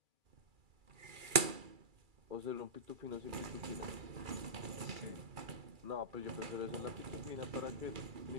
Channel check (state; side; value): late; left; 2.3 ms